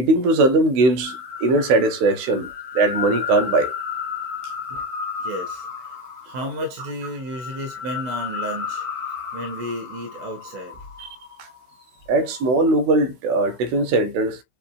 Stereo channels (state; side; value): late; left; 16 ms